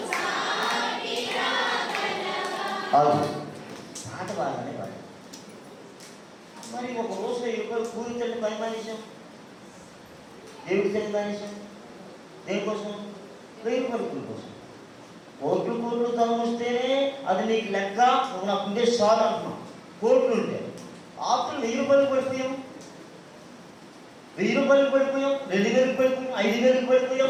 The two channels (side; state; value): both; identical; correlation 1.00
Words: పాట బాగానే పాడు. మరి ఒక రోజు 20 రూపాయలు కూలి తల్లి పని మానేశాం, దేవుడి తల్లి మానేశాం. దేనికోసం? 1000 రూపాయల కూలి కోసం. కోట్లు ధనం వస్తేనే అది నీకు లెక్క, నువ్వు నాకు ఉండే చాలు అంటున్నావు. కోట్లు ఉంటే ఆస్తులు 1000 రూపాయలు పడిపోయాం, 1000 రూపాయలు పడిపోయాం, 2000 పడిపోయాం, 5000